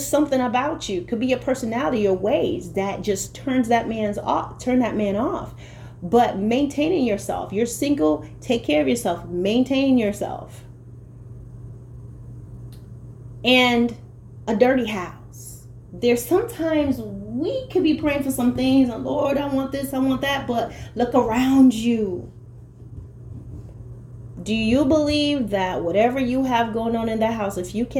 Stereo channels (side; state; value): both; identical; correlation 1.00